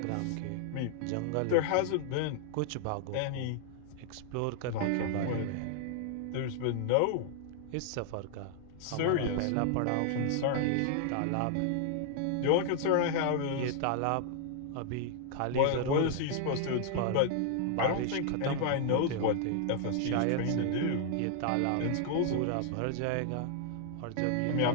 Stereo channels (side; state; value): both; different; correlation -0.01